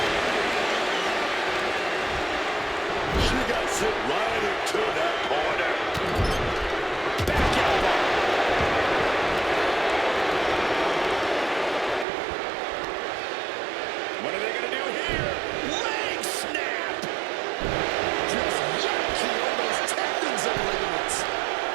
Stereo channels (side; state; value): left; drops out; at 12.1 s